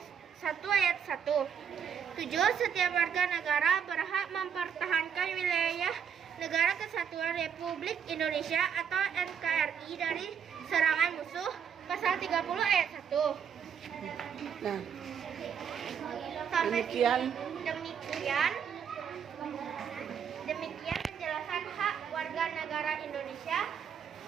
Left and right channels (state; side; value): quieter; left; 7.7 dB